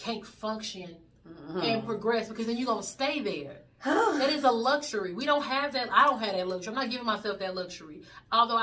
function and progress, because then you're going to stay there. That is a luxury. We don't have that. I don't have that luxury. I'm not giving myself that luxury. Although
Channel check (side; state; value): both; identical; correlation 1.00